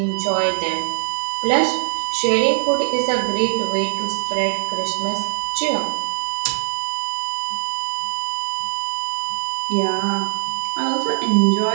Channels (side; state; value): left; silent; 57 dB below the other